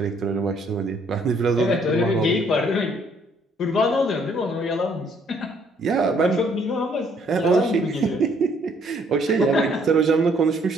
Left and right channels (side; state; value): both; normal; correlation 0.65